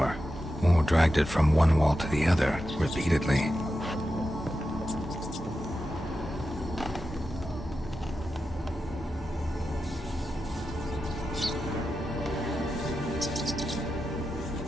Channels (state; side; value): normal; both; correlation 0.90